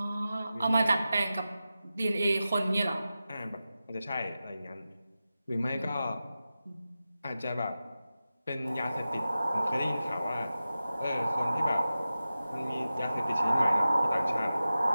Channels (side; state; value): both; inverted; correlation -0.94